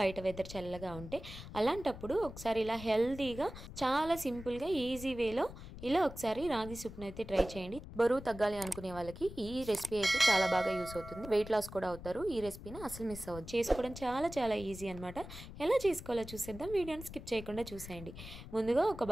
వెదర్ చల్లగా ఉంటే. అలాంటప్పుడు ఒకసారి ఇలా హెల్తీగా, చాలా సింపుల్గా, ఈజీ వేలో ఇలా ఒకసారి రాగి సూప్ని అయితే ట్రై చేయండి. బరువు తగ్గాలి అనుకునే వాళ్ళకి ఈ రెసిపీ అయితే చాలా బాగా యూస్ అవుతుంది. వెయిట్ లాస్ కూడా అవుతారు. ఈ రెసిపీని అసలు మిస్ అవ్వదు. చేసుకోవడం చాలా చాలా ఈజీ అనమాట. ఎలా చేసుకోవాలో చూసేద్దాం. వీడియోని స్కిప్ చేయకుండా చూసేయండి. ముందుగా ఒక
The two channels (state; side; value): noise; left; rumble, 13 dB below the sound